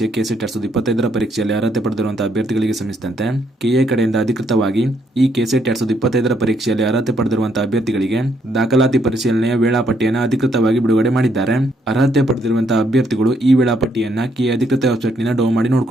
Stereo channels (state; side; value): normal; both; correlation 0.73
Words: ಕೆಸೆಟ್ 2025 ಪರೀಕ್ಷೆಯಲ್ಲಿ ಅರ್ಹತೆ ಪಡೆದಿರುವಂತಹ ಅಭ್ಯರ್ಥಿಗಳಿಗೆ ಸಂಬಂಧಿಸಿದಂತೆ ಕೆಎ ಕಡೆಯಿಂದ ಅಧಿಕೃತವಾಗಿ ಈ ಕೆಸೆಟ್ 2025 ಪರೀಕ್ಷೆಯಲ್ಲಿ ಅರ್ಹತೆ ಪಡೆದಿರುವಂತಹ ಅಭ್ಯರ್ಥಿಗಳಿಗೆ ದಾಖಲಾತಿ ಪರಿಶೀಲನೆಯ ವೇಳಾಪಟ್ಟಿಯನ್ನು ಅಧಿಕೃತವಾಗಿ ಬಿಡುಗಡೆ ಮಾಡಿದ್ದಾರೆ. ಅರ್ಹತೆ ಪಡೆದಿರುವಂತಹ ಅಭ್ಯರ್ಥಿಗಳು ಈ ವೇಳಾಪಟ್ಟಿಯನ್ನ ಕೆಎ ಅಧಿಕೃತ ವೆಬ್ಸೈಟ್ ನಿಂದ ಡೌನ್ ಮಾಡಿ